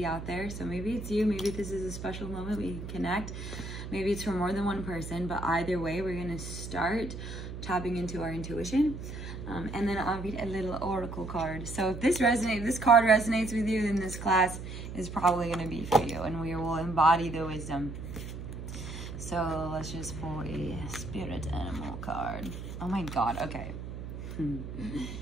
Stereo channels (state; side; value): noise; right; hum, 9 dB below the sound